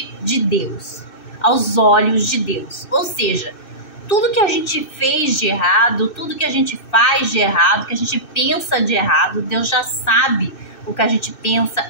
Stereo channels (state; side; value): late; right; 2.6 ms